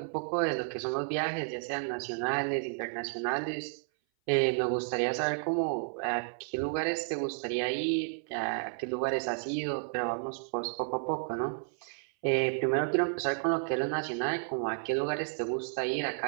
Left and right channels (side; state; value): left; silent; 56 dB below the other